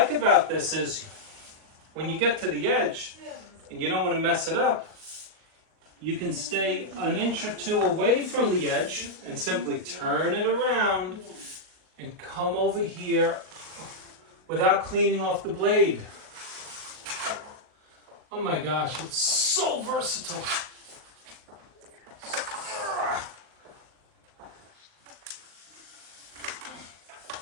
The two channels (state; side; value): late; left; 38 ms